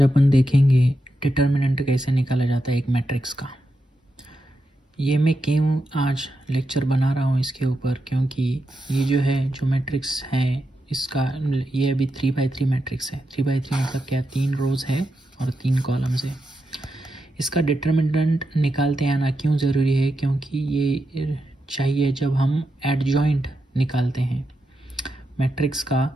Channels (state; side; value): normal; both; correlation 0.86